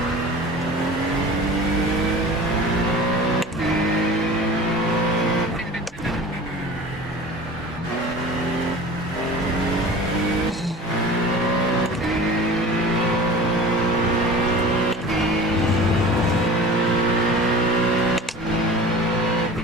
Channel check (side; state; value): both; normal; correlation 0.39